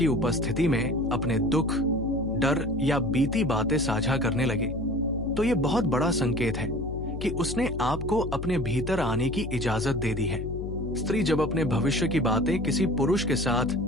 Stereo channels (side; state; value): left; noise; hum, 7 dB below the sound